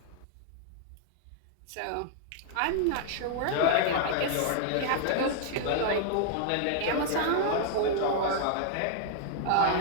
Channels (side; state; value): both; different; correlation -0.01